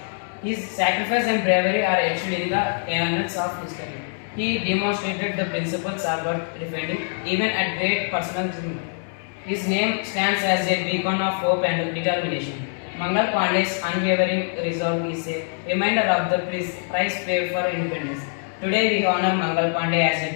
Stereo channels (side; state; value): right; silent; 63 dB below the other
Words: His sacrifice and bravery are etched in the annals of history. He demonstrated the principles of defending even at great personal risk. His name stands as a beacon of hope and determination. Mangal Pandey's unwavering resolve is a reminder of the price paid for independence. Today we honor Mangal Pandey as